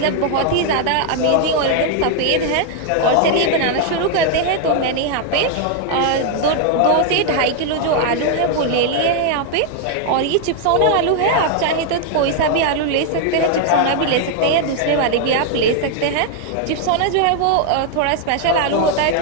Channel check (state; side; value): different; both; correlation 0.00